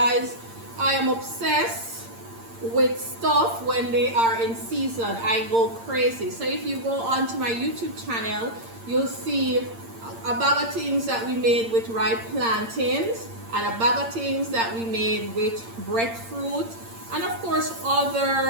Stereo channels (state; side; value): late; left; 8.7 ms